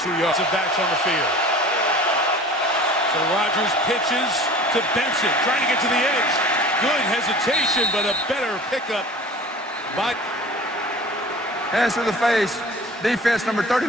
yards. The backs on the field. So Rodgers pitches to Benson, trying to get to the edge. Good hesitation, but a better pickup by... Hands to the face. Defense number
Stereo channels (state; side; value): normal; both; correlation 0.42